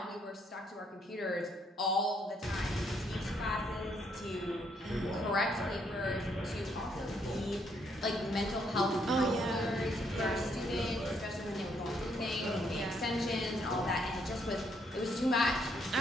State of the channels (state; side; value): normal; both; correlation 0.72